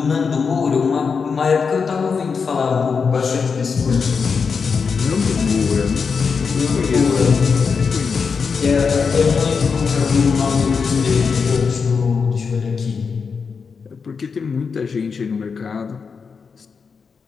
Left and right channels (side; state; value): right; quieter; 5.5 dB